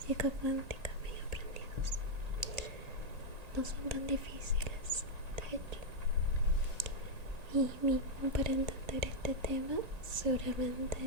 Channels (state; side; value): late; left; 1.8 ms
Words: cuántica medio aprendidos. No son tan difíciles, de hecho. Y mismo para entender este tema, seguramente,